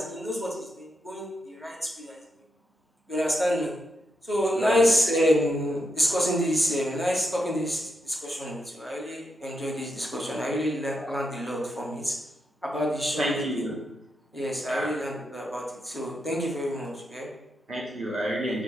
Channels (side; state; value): both; normal; correlation 0.83